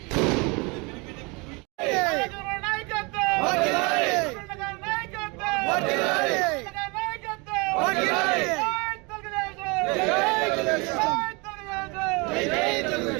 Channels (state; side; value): quieter; left; 28.3 dB